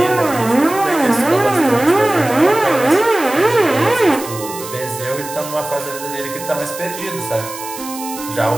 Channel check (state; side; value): noise; right; hiss, 12 dB below the sound